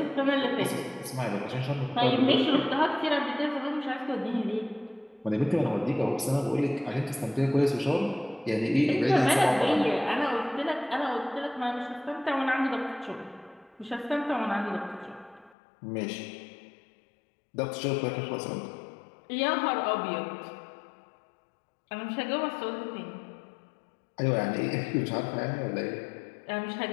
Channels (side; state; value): right; drops out; at 15.6 s